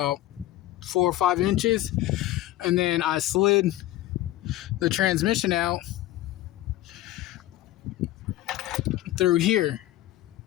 4 or 5 inches, and then I slid the transmission out through here.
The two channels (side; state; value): right; quieter; 15.2 dB